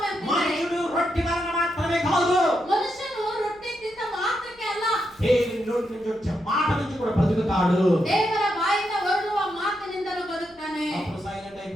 అంటున్నాడు, మనుషుడు రొట్టె వలన మాత్రమే కాదు, మనుషులు రొట్టె తింత మాత్రకే అಲ್ಲ, దేవుని నోటి నుంచి వచ్చే మాట నుంచి కూడా బ్రతుకుతాడు. ದೇವರ ಬಾಯಿಂದ ಹೊರಡುವ ಮಾತಿನಿಂದಲೂ ಬದುಕ್ತಾನೆ. అప్పుడు సైలెంట్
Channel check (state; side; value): noise; right; hum, 29 dB below the sound